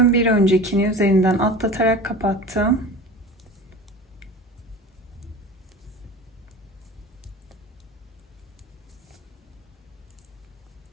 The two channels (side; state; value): both; normal; correlation 0.36